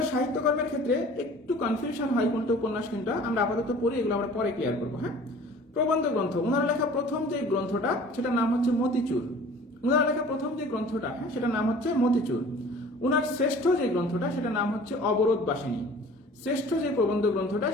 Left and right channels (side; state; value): both; normal; correlation 0.47